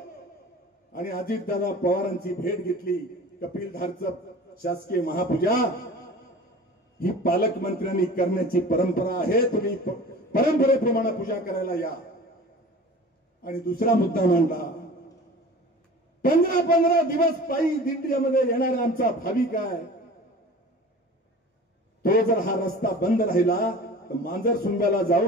आणि अजितदादा पवारांची भेट घेतली. कपिलधारचं शासकीय महापूजा ही पालकमंत्र्यांनी करण्याची परंपरा आहे. तुम्ही परंपरेप्रमाणे पूजा करायला या. आणि दुसरा मुद्दा मांडला, 15 दिवस पायी दिंडीमध्ये येणारा आमचा भाविक आहे, तो जर हा रस्ता बंद राहिला तर मांजर सुंब्याला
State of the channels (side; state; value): both; normal; correlation 0.40